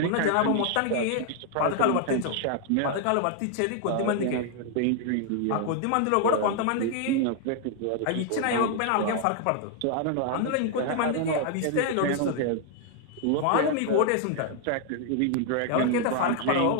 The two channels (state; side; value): different; both; correlation 0.00